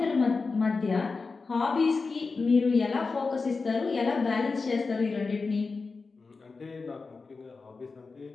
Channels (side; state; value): right; quieter; 4.3 dB